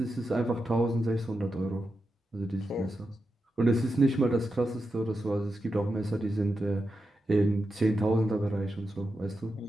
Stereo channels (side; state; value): both; normal; correlation 0.88